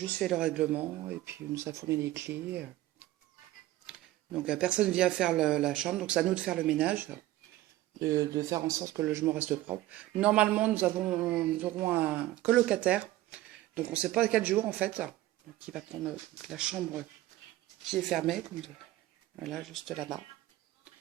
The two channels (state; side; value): quieter; left; 16.1 dB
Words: fait le règlement et puis on nous a fourni les clés. Donc personne vient faire la chambre, donc c'est à nous de faire le ménage, de faire en sorte que le logement reste propre. Normalement, nous aurons un colocataire, donc on ne sait pas quel jour en fait, qui va prendre la chambre qui est fermée, comme voilà, juste là-bas.